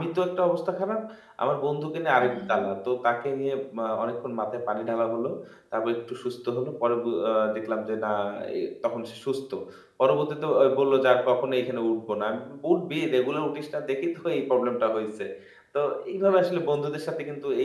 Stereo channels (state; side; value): identical; both; correlation 1.00